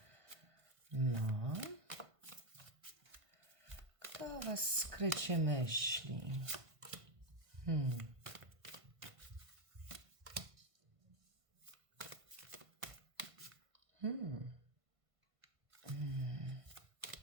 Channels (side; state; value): left; late; 1.5 ms